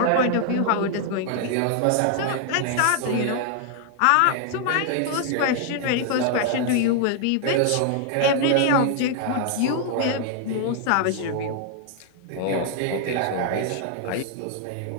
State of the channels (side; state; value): both; different; correlation 0.00